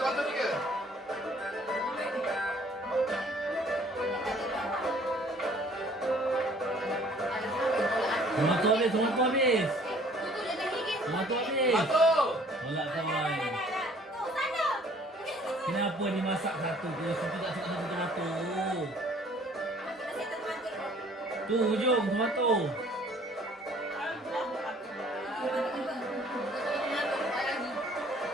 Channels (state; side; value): normal; both; correlation 0.56